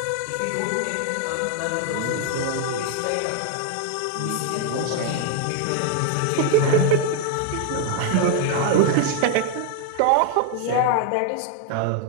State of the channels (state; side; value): different; both; correlation 0.00